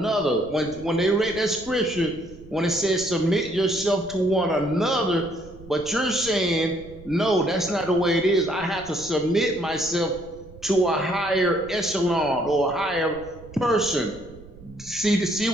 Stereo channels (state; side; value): noise; right; rumble, 19 dB below the sound